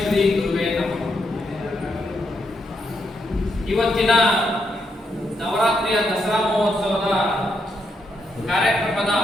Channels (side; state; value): both; normal; correlation 0.80